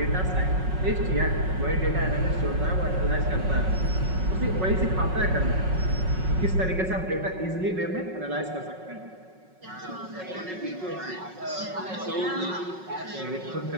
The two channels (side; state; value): left; late; 5.4 ms